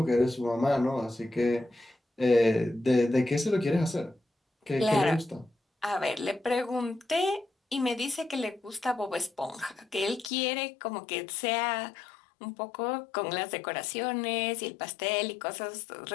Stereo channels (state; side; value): drops out; right; at 10.3 s